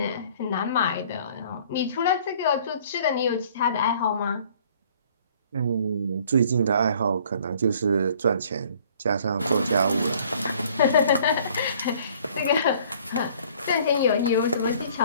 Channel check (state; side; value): inverted; both; correlation -0.56